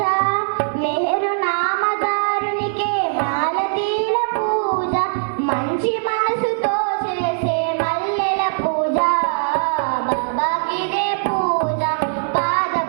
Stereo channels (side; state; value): left; silent; digital silence